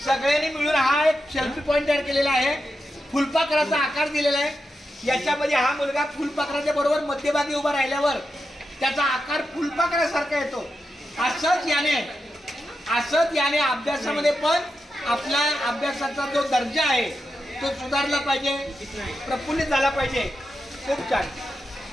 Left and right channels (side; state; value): both; normal; correlation 0.88